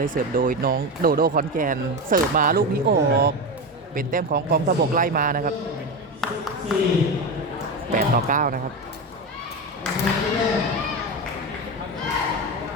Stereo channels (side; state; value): both; normal; correlation 0.19